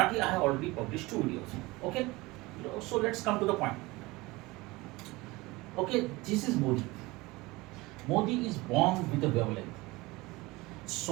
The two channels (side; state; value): left; quieter; 21.8 dB